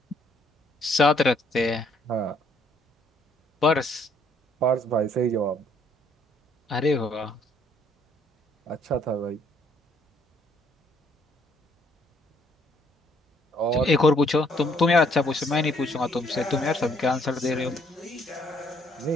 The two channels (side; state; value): both; normal; correlation 0.66